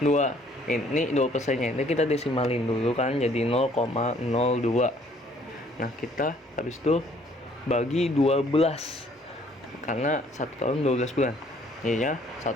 2%-nya ini kita desimalin dulu kan jadi 0,02. Nah, kita habis itu bagi 12 karena 1 tahun 12 bulan. Jadinya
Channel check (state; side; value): normal; both; correlation 0.61